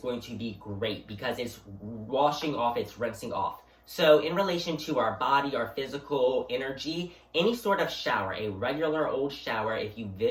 to be great because it's washing off, it's rinsing off. So in relation to our body, our physical energy, any sort of shower, a regular old shower, if you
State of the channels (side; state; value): both; identical; correlation 1.00